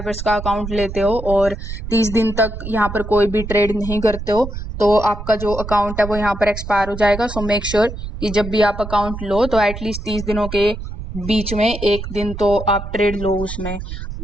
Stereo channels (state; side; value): noise; right; rumble, 8 dB below the sound